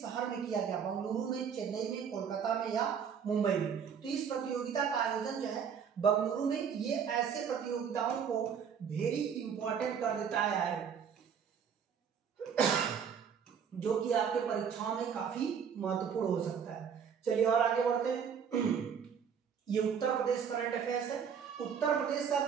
शहर में किया गया, बंगलुरु में, चेन्नई में, कोलकाता में या मुंबई में। तो इस प्रतियोगिता का आयोजन जो है बंगलुरु में, ये ऐसे प्रतियोगिताओं को वेरी इंपॉर्टेंट कर देता है जो कि आपके परीक्षाओं में काफी महत्वपूर्ण हो सकता है। चलिए और आगे बढ़ते हैं। ये उत्तर प्रदेश करंट अफेयर्स है। उत्तर प्रदेश का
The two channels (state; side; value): quieter; left; 7.2 dB